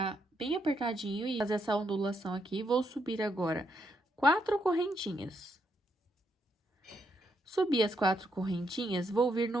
bem apertadinho e fazer essa ondulação aqui. Vou subir agora 4 correntinhas. Subi as 4 correntinhas, vou vir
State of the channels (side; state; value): both; normal; correlation 0.78